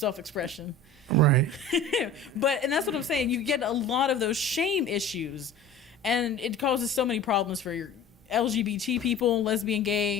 Right. And that's what I'm saying. You get a lot of those shame issues. And it causes so many problems for your LGBT people, lesbian,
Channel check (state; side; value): quieter; right; 3.2 dB